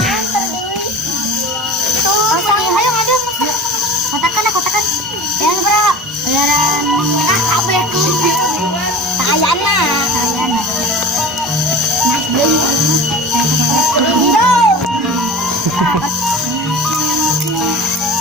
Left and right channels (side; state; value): both; normal; correlation 0.36